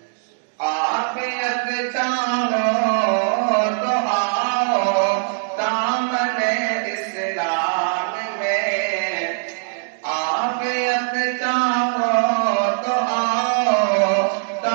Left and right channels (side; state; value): left; silent; digital silence